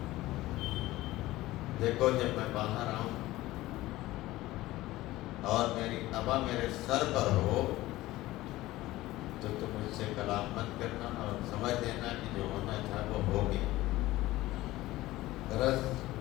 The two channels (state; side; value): quieter; right; 17.3 dB